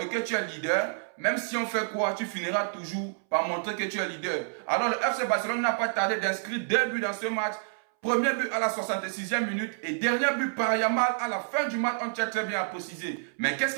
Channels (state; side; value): silent; left; 59 dB below the other